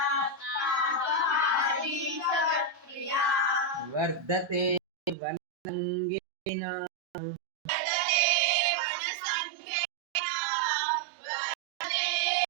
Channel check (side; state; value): left; drops out; at 5.2 s